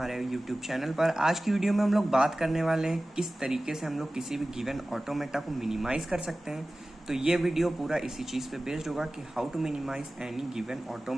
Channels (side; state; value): both; normal; correlation 0.97